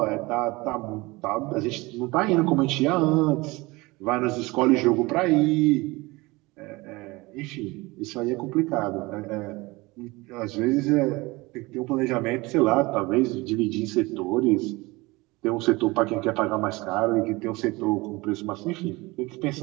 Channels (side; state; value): left; quieter; 22.7 dB